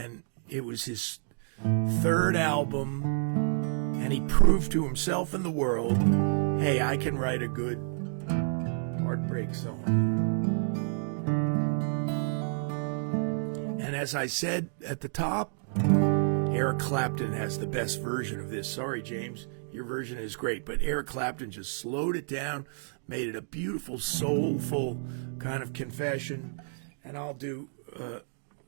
it was his third album, and he proved to himself and the world, hey, I can write a good heartbreak song. And as I said at the top, Eric Clapton has the best version of this. Sorry, James, your version is great, but Eric Clapton just slowed it down, made it a beautiful, soulful kind of confession. And I'll do a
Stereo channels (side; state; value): left; silent; digital silence